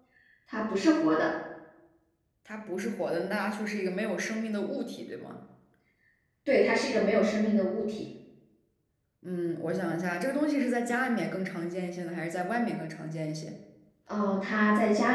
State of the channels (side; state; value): both; identical; correlation 1.00